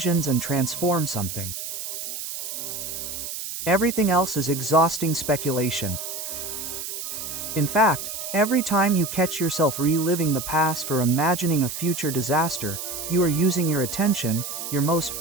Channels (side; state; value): right; noise; hiss, 6 dB below the sound